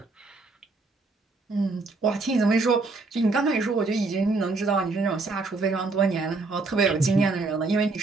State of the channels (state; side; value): quieter; left; 3.6 dB